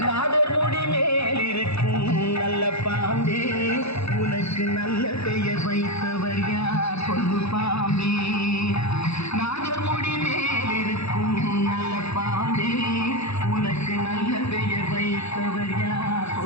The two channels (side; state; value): right; late; 0.79 ms